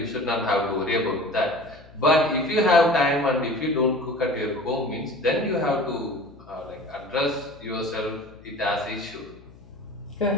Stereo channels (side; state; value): left; noise; hum, 23 dB below the sound